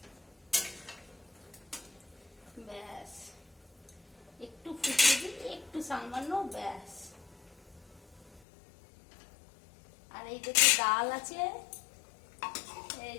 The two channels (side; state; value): right; drops out; at 8.4 s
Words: ব্যাস একটু ফুটিয়ে দিই, একটু সামান্য, ব্যাস। আর এই দেখুন ডাল আছে, এই